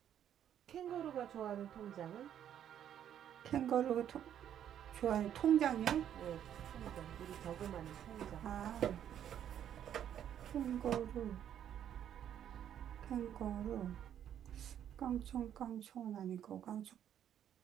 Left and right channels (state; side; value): quieter; left; 10.0 dB